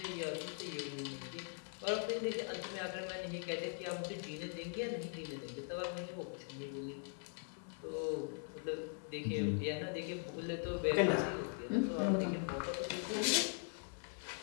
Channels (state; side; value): silent; right; 50 dB below the other